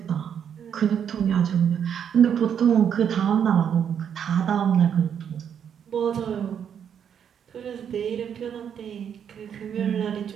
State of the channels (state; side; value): quieter; left; 8.3 dB